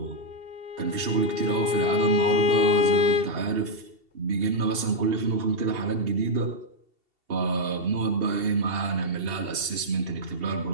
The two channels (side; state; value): left; late; 2.7 ms